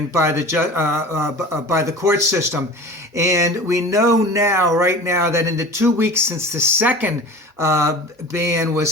by the court system. And we know now, right now, that in the 2 weeks since the second ban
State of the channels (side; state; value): both; normal; correlation 0.38